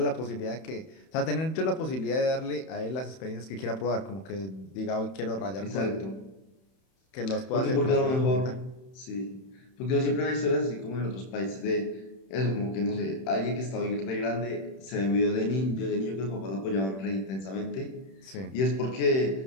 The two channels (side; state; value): right; late; 31 ms